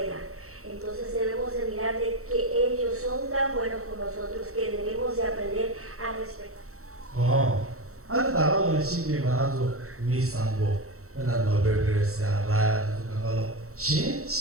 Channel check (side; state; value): left; late; 0.64 ms